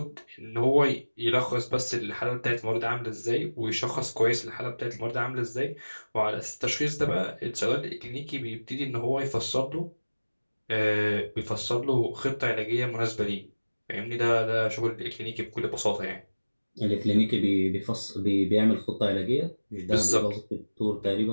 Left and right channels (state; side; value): inverted; both; correlation -1.00